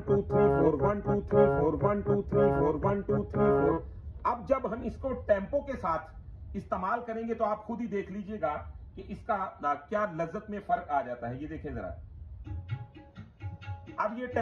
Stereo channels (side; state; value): both; identical; correlation 1.00